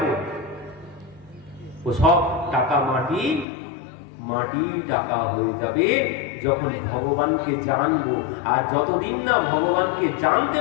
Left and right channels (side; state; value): right; drops out; at 3.5 s